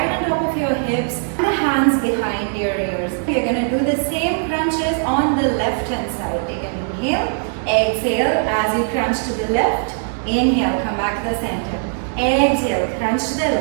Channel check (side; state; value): left; silent; 64 dB below the other